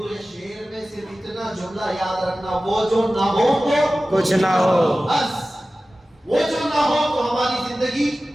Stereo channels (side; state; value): both; normal; correlation 0.96